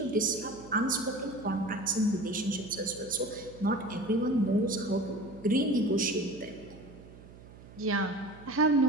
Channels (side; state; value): right; noise; hum, 19 dB below the sound